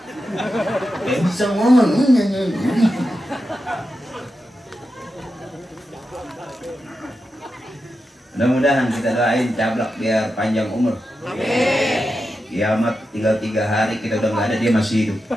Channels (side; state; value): both; normal; correlation 0.89